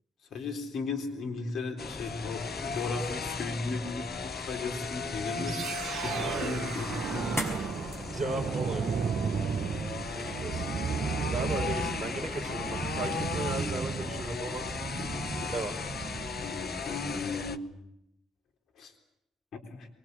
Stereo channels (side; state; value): both; normal; correlation 0.65